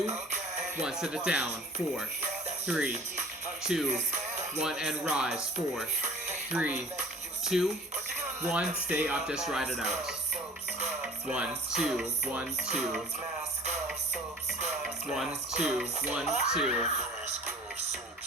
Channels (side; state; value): both; normal; correlation 0.47